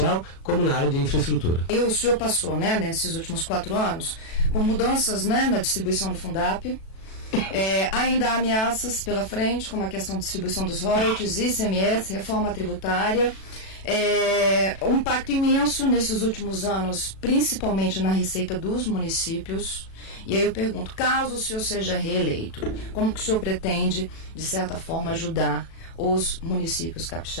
como na área de infraestrutura. E o senhor passou, né, nesses últimos 4 anos, por mudanças, né, na distribuição do Fundap. Ainda há ameaças pela frente, como a questão da distribuição dos royalties, ICMS, reforma tributária. Um impacto imenso nesses últimos anos, principalmente na receita dos municípios. E aí eu pergunto, caso o senhor seja reeleito, como que o senhor pretende, de certa forma, ajudar os municípios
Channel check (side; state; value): right; late; 37 ms